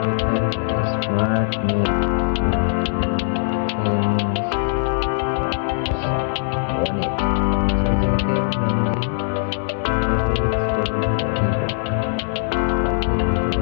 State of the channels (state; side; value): silent; right; 65 dB below the other